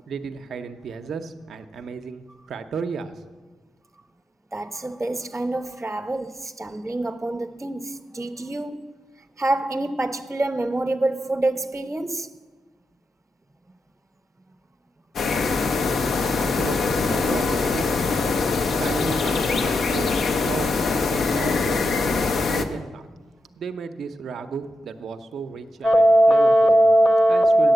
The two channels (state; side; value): normal; both; correlation 0.88